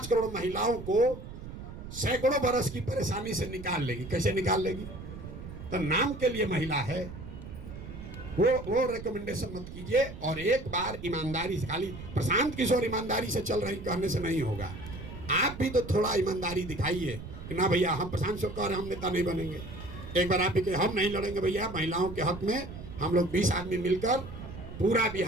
करोड़ महिलाओं को सैकड़ों बरस की परेशानी से निकाल लेगी। कैसे निकाल लेगी? तो नाम के लिए महिला है, वो रिकमेंडेशन मत कीजिए। और एक बार ईमानदारी से, खाली प्रशांत किशोर ईमानदारी से चल रही कहने से नहीं होगा, आप भी तो थोड़ा ईमानदारी दिखाइए कि ना भैया हम प्रशांत किशोर कह रहे हम नेता नहीं बनेंगे। एक बार आप भी कहे हम नहीं लड़ेंगे भैया, महिलाओं के हक में हम लोग 20 आदमी मिलकर पूरा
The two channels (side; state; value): right; noise; rumble, 11 dB below the sound